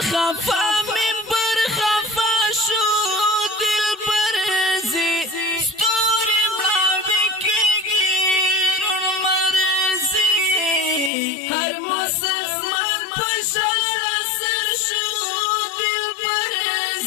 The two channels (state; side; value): drops out; right; at 11.1 s